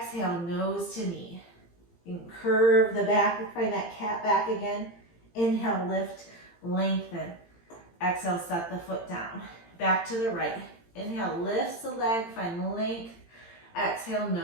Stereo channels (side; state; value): right; late; 17 ms